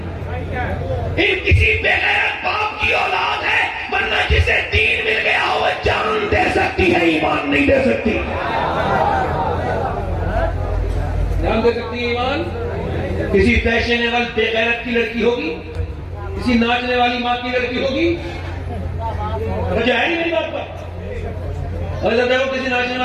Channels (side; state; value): both; identical; correlation 1.00